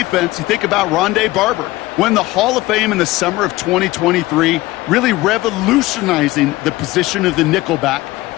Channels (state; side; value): quieter; right; 18.8 dB